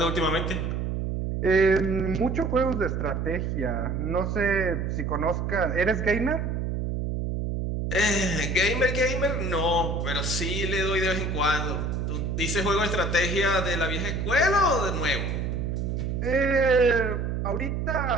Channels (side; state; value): right; noise; hum, 1 dB below the sound